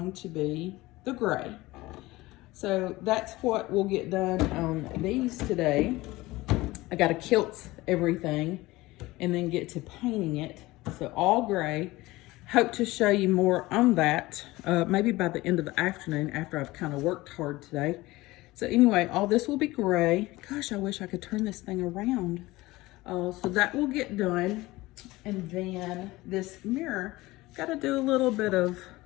to be the gray. So that's what we'll get done on these today. I got to kilt everything and then get to painting it. So all gray. Hope to show you more on that, maybe by the end of the afternoon after I've kind of worked hard today. So anyway, all this will be gray. Gosh, I wish I could turn this thing around. So that will get done. And then this mirror, got to do a little bit of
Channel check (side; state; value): right; quieter; 19.5 dB